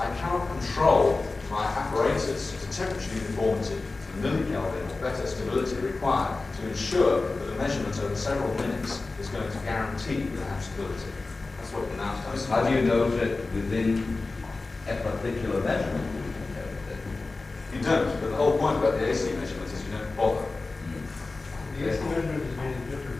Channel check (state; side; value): quieter; right; 3.6 dB